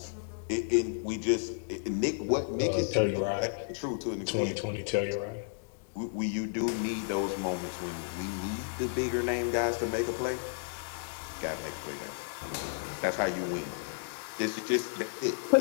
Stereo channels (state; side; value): silent; right; digital silence